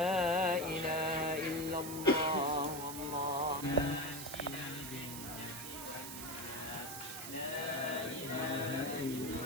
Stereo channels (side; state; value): right; noise; hiss, 8 dB below the sound